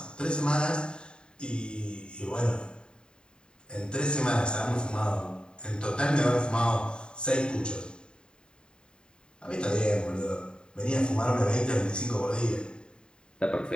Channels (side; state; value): right; late; 0.049 ms